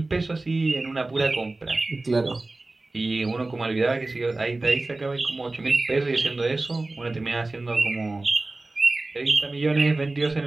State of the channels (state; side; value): quieter; left; 3.1 dB